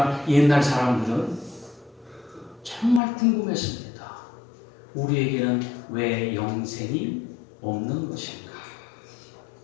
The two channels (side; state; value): right; drops out; at 3.0 s